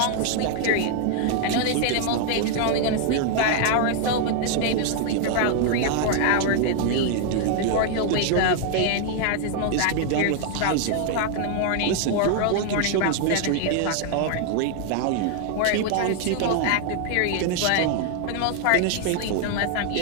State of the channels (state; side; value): different; both; correlation 0.00